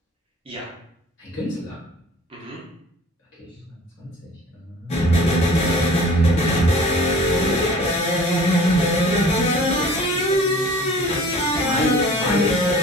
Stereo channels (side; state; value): both; normal; correlation 0.47